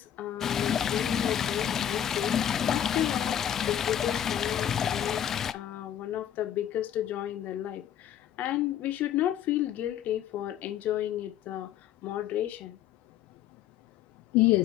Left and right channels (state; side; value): quieter; right; 10.4 dB